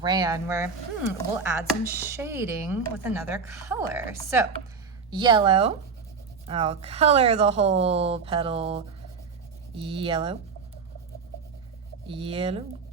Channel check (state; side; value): quieter; left; 5.3 dB